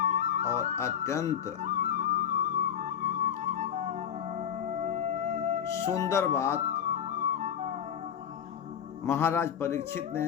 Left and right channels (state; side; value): quieter; right; 8.7 dB